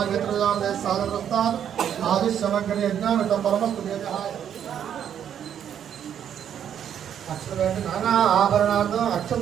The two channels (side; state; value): left; quieter; 9.2 dB